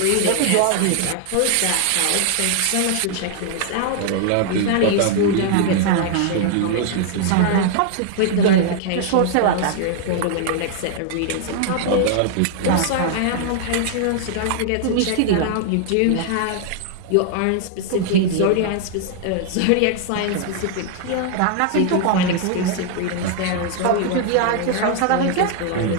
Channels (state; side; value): different; both; correlation 0.00